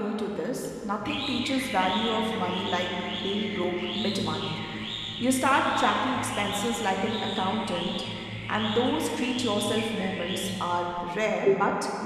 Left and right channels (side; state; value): both; identical; correlation 1.00